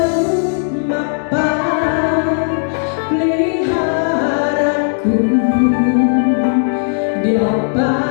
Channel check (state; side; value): silent; right; digital silence